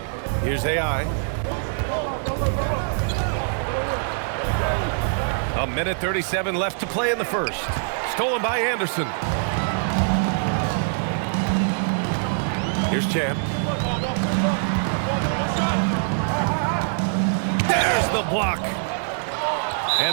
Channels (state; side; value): silent; left; digital silence